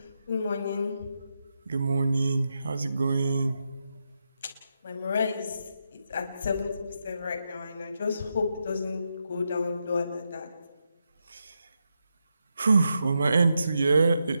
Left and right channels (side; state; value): both; inverted; correlation -0.85